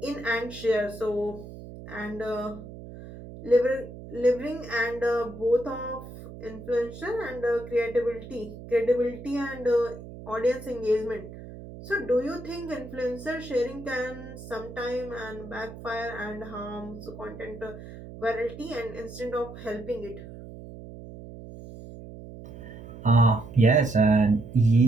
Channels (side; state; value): right; noise; hum, 14 dB below the sound